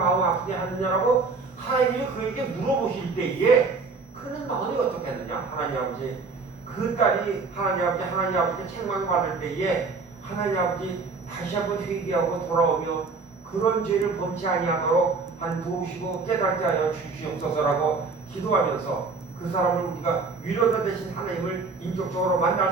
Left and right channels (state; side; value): quieter; left; 4.4 dB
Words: 아프게 하느냐라고 하나님이 그에게 물어보실 때에 그는 마음이 어떻겠느냐? 하나님 아버지 그 딸이 하나님 아버지께 책망받을 때에 하나님 아버지 다시 한번 회개하고 돌아오며 그런 죄를 범치 아니하도록 도우시고 깨닫게 하여 주시옵소서라고 기도하면서 그 사람을 우리가 위로자 되신 하나님을 인격적으로 만날